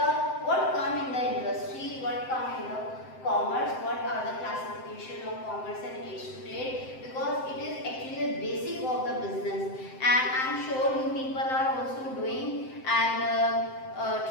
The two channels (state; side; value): late; right; 7.7 ms